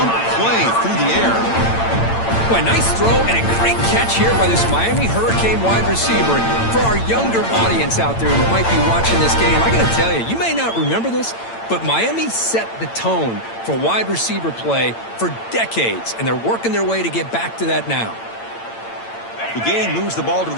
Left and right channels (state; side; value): late; right; 8.8 ms